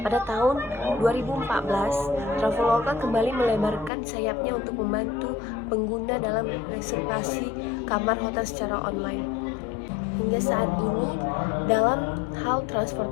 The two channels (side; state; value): right; drops out; at 3.9 s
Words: pada tahun 2014, Traveloka kembali melebarkan sayapnya untuk membantu pengguna dalam reservasi kamar hotel secara online. Hingga saat ini, dalam hal